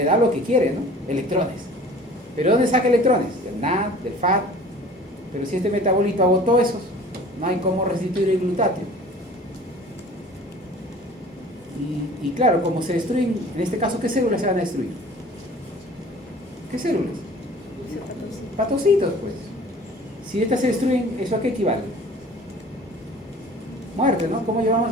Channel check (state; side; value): normal; both; correlation 0.46